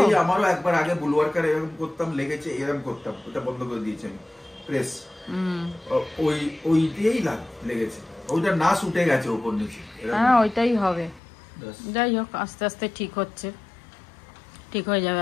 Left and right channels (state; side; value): drops out; right; at 11.2 s